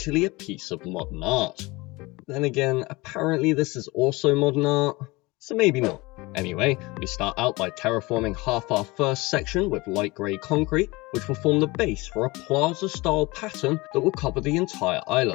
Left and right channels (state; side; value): quieter; right; 22.9 dB